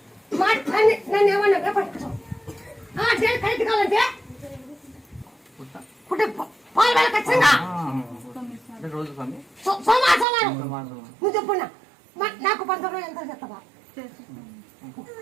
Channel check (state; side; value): drops out; left; at 10.2 s